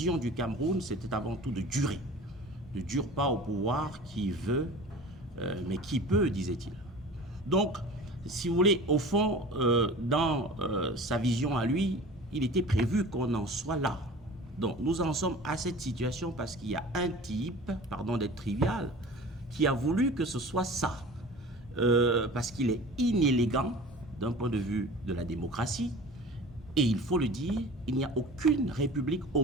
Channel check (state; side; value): normal; both; correlation 0.40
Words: du Cameroun, c'était avant tout de durer. Ne dure pas au pouvoir qui veut, mais qui peut, disait-il. Donc, si vous voulez, au fond, dans sa vision à lui, il était prévu qu'on en soit là. Donc, nous en sommes à cette situation parce qu'il y a un type, pardon d'être trivial, qui a voulu que ce soit ça. Parce qu'il est inélégant d'un point de vue de la démocratie. Et il faut le dire, il n'y a aucune république